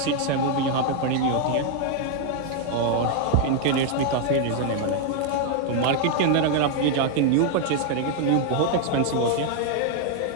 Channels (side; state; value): both; different; correlation 0.00